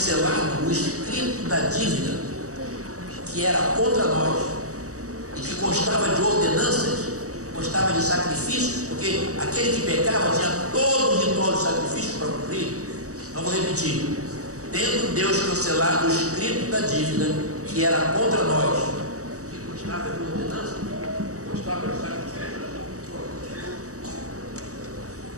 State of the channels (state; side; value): late; left; 0.66 ms